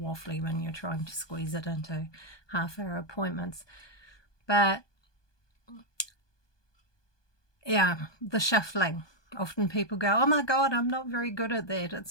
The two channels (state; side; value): late; right; 1.2 ms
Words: when you're trying to squeeze it into half-hour appointments. But yeah, the shuffling. Often people go, oh my God, I'm not very good at that.